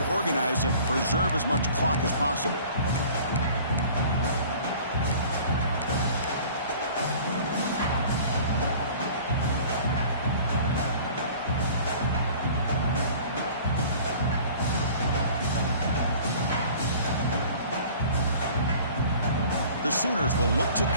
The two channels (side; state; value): both; inverted; correlation -0.47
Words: organized and preserve as much clock as possible. The Sooners will look to